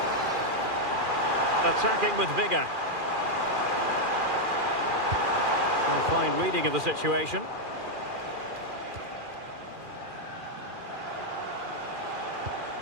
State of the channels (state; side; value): late; left; 2.4 ms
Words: Attacking with vigour. A fine reading of the situation.